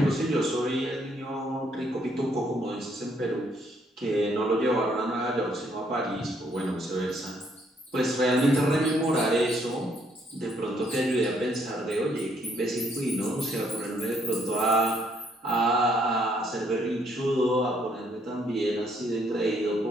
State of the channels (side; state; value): both; normal; correlation 0.69